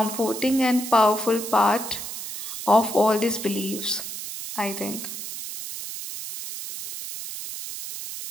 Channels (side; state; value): right; noise; hiss, 8 dB below the sound